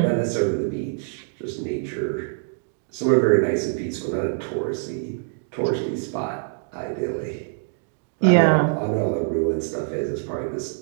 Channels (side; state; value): left; silent; digital silence